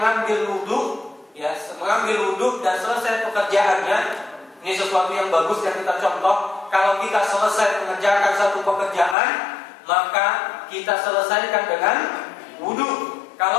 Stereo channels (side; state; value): right; drops out; at 9.2 s